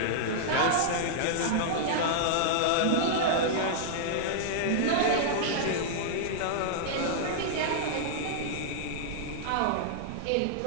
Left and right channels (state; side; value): different; both; correlation -0.02